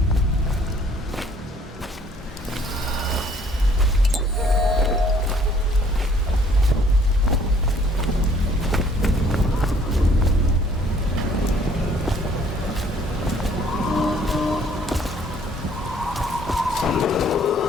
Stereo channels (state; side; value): normal; both; correlation 0.60